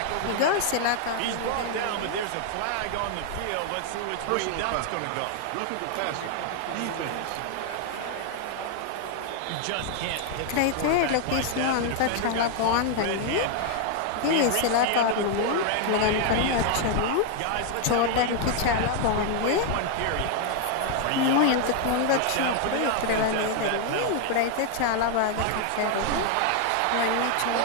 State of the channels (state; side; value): different; both; correlation 0.00